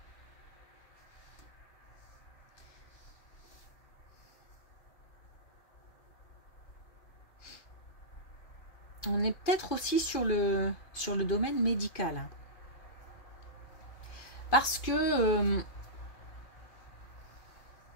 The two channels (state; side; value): late; right; 2.5 ms